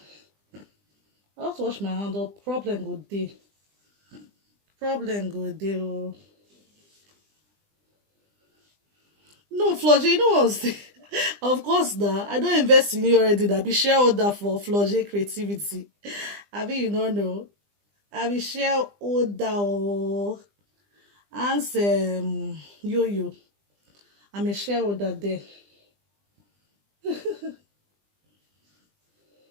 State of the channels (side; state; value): left; late; 20 ms